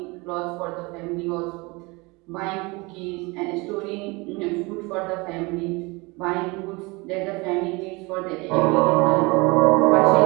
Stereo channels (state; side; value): quieter; left; 25.5 dB